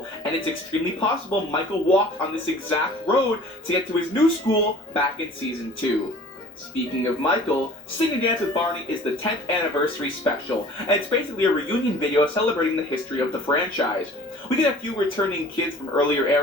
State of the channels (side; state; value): both; normal; correlation 0.47